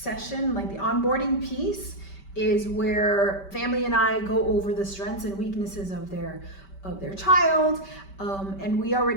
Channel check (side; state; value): right; late; 5.2 ms